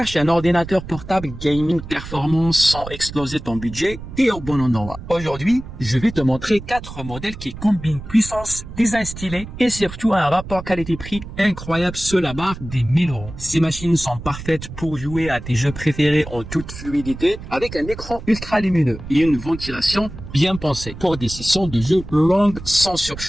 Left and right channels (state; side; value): noise; right; rumble, 12 dB below the sound